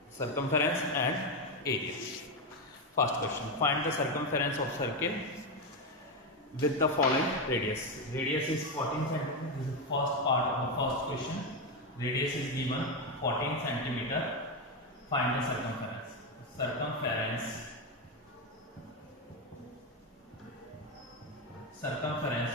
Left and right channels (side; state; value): both; normal; correlation 0.09